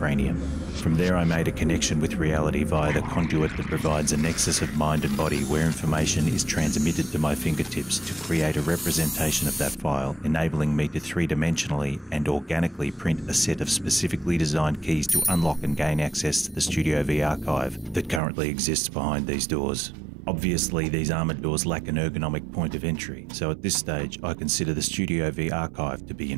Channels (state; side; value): drops out; left; at 18.2 s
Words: From there I made a connection with reality via the conduit that provides a nexus of mind and body where information is transmitted to my fingertips to create a representation of that file, enabling me to three-dimensionally and organically print a set of specifically designed keys to unlock and gain access to the Studio V archive that currently exists behind these doors. Obviously, these armoured doors lack an ergonomic point of entry, so at this stage I consider the Studio V archive to be